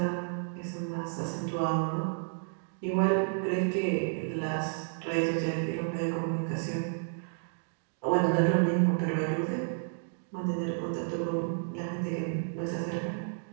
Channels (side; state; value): left; silent; digital silence